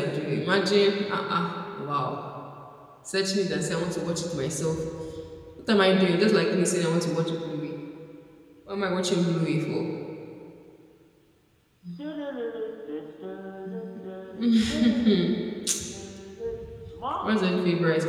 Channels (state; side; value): identical; both; correlation 1.00